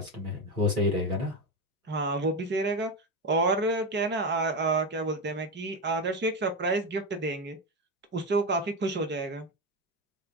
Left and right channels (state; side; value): normal; both; correlation 0.15